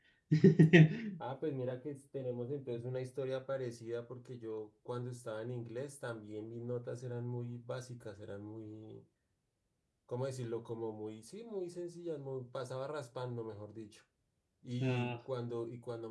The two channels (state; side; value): identical; both; correlation 1.00